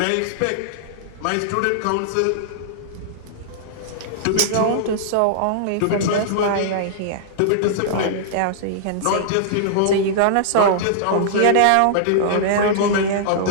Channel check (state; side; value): different; both; correlation -0.02